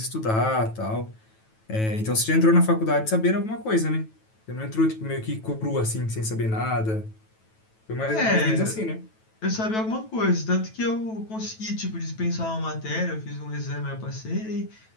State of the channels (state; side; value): late; right; 9.2 ms